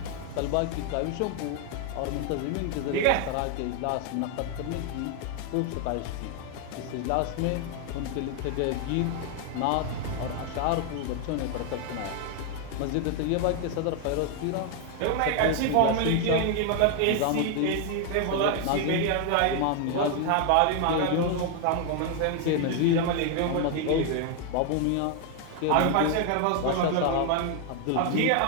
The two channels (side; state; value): both; different; correlation 0.01